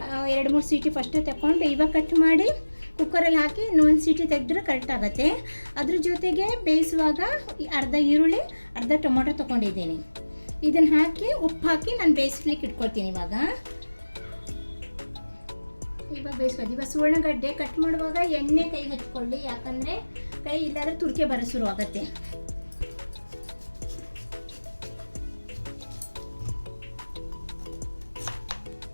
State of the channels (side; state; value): both; inverted; correlation -1.00